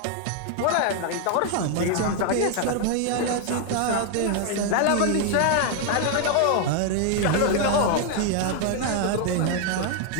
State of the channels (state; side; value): different; both; correlation 0.00